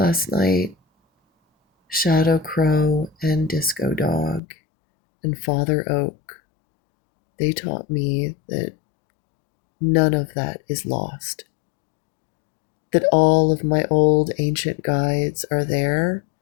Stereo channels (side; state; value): right; drops out; at 4.4 s